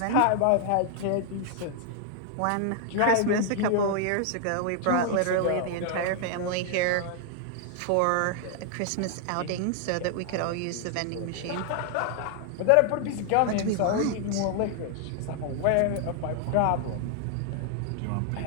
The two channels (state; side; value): different; both; correlation 0.00